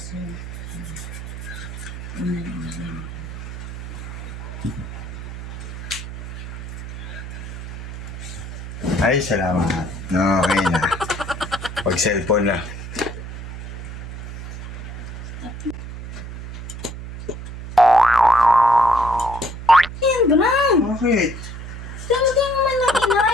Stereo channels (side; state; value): right; noise; hum, 9 dB below the sound